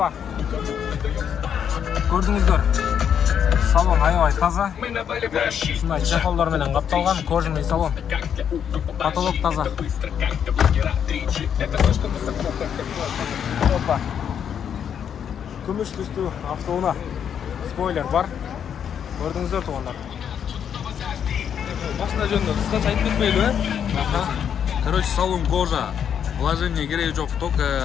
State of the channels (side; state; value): right; quieter; 8.3 dB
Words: Көрдіңіздер. Салон аябай таза. Шындай чехолдармен қапталған кожаный салон. Потолок таза. Опа. Күміш түсті автоуна. Спойлер бар. Көрдіңіздер туғандар. Машина жөнінде қысқаша айтып кетпейлі, Короче, салон кожа. Вложение керек жоқ, только